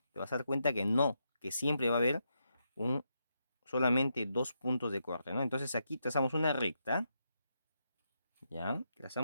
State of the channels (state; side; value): inverted; both; correlation -0.82